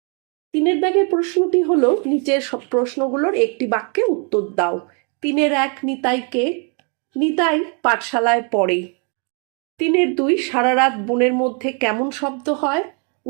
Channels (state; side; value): quieter; left; 37.2 dB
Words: 3 দাগের প্রশ্নটি হলো, নিচের সব প্রশ্নগুলোর একটি বাক্যে উত্তর দাও। 3-1 নিতাইকে? নিতাই পাঠশালায় পড়ে। 3-2 সারা রাত বনের মধ্যে কেমন শব্দ হয়?